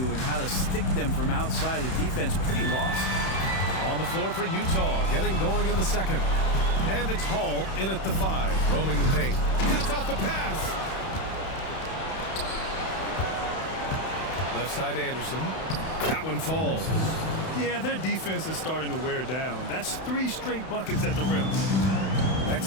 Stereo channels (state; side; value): late; right; 31 ms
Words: and how to stick them from outside. The defense pretty lost. On the floor for Utah, getting going in the second. And it's Hall in at the 5, roaming the paint. Cuts off the pass. Left side Anderson. That one falls. Yeah, their defense is starting to wear down. That's 3 straight buckets at the rim.